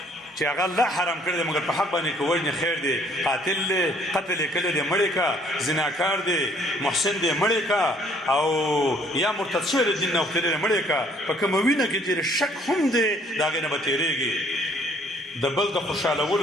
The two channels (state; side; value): normal; both; correlation 0.61